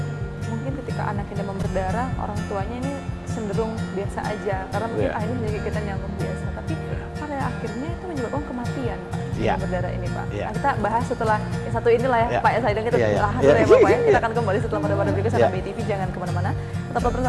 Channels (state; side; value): identical; both; correlation 1.00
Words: mungkin ketika anaknya demam berdarah, orang tuanya ini cenderung biasa aja karena mungkin akhirnya menjadi kita nyamuk biasa, tapi pada akhirnya itu menyebabkan kematian Pak. Demam berdarah ini Pak. Nah, kita bahas setelah yang satu inilah ya Pak ya, saya dan kita bahas dulu ya Bapak ya. Kita akan kembali setelah pada berikut sana BTV, jangan kemana-mana, tetaplah